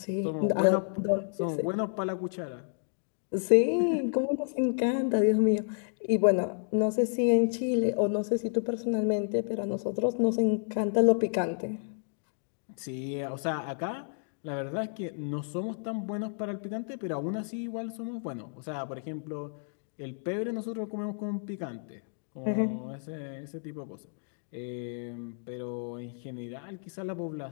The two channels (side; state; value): right; silent; digital silence